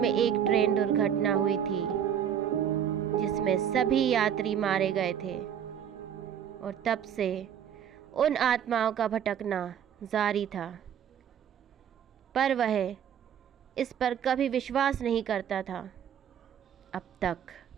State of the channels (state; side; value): quieter; left; 9.0 dB